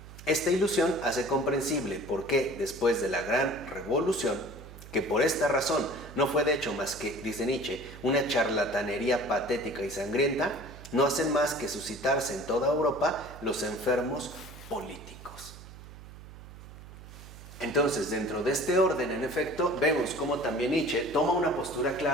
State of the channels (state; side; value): noise; right; hum, 16 dB below the sound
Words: Esta ilusión hace comprensible por qué, después de la gran revolución, que por esta razón no fue de hecho más que, dice Nietzsche, una charlatanería patética y sangrienta, no hacen más que suscitarse en toda Europa los enfermos políticos. Entonces, dentro de este orden, en efecto, vemos cómo también Nietzsche toma una postura